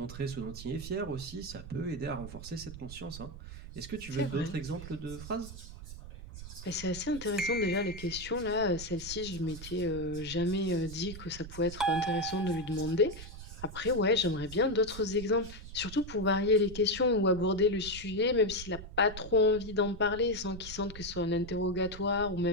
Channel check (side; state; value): right; noise; rumble, 12 dB below the sound